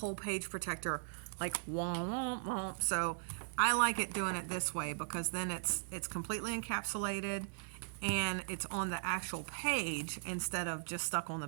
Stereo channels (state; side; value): silent; left; digital silence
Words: page protector like womp, womp, womp. So I like it doing it this way because then it's completely encapsulated and it's on the actual page instead of just stuck on